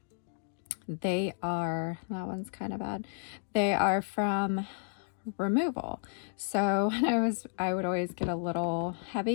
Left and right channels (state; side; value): silent; right; digital silence